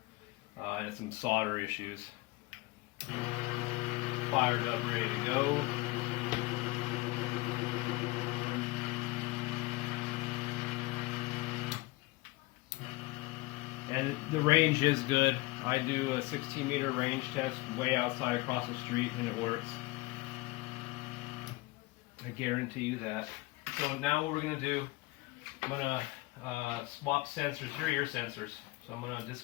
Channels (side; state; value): right; quieter; 21.2 dB